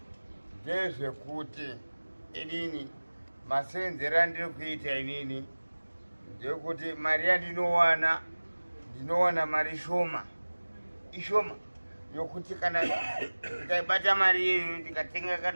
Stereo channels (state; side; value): inverted; both; correlation -1.00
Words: Ndezvekuti inini masenzero andiri kuita inini ndekuti mari yandinowana ndinowana mari shoma. Ishoma. Yokuti kana ndikaibata mari iyoyo ndikatenga